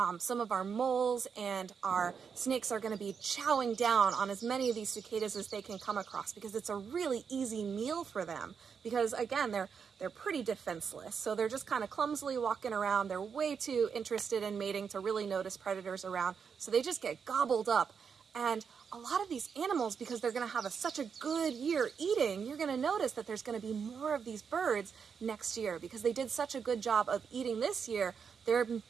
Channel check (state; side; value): quieter; left; 6.4 dB